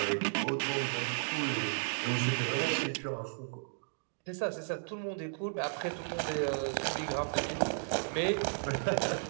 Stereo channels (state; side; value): silent; left; digital silence